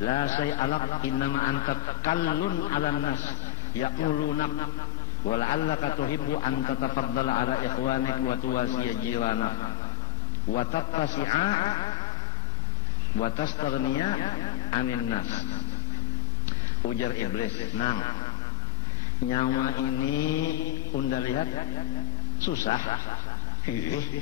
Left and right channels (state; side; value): quieter; right; 11.4 dB